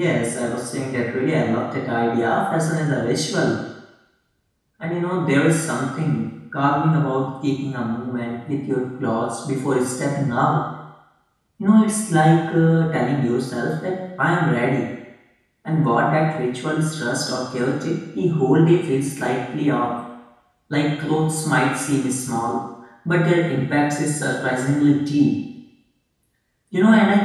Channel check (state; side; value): identical; both; correlation 1.00